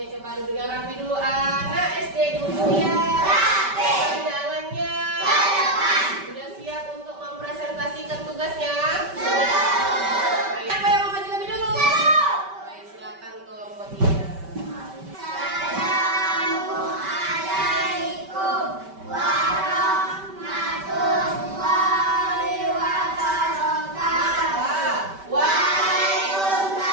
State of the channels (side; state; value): left; late; 5.2 ms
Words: coba duduk yang rapi dulu. Anak SD duduk ya. Rapi. Jalannya. Sudah siap untuk mempresentasikan tugasnya? Siapa yang mau maju lebih dulu? Baik, silakan kelompok 3. Assalamualaikum warahmatullahi wabarakatuh.